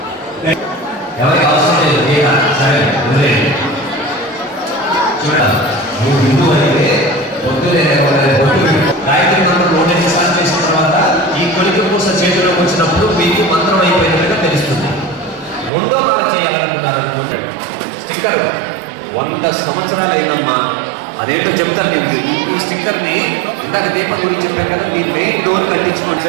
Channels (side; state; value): left; drops out; at 15.7 s